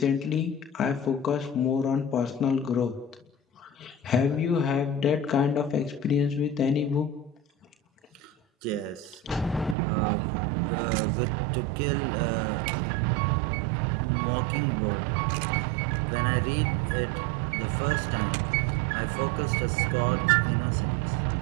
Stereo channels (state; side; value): drops out; left; at 9.8 s